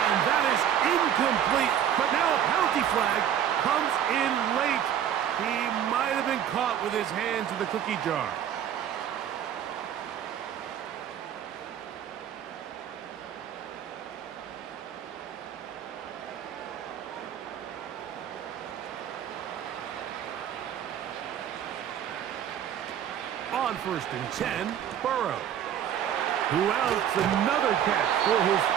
that is incomplete, but now a penalty flag comes in late. He might have been caught with his hands in the cookie jar. On first and 10, Burrow, who outs another catch for his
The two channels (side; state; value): left; quieter; 9.7 dB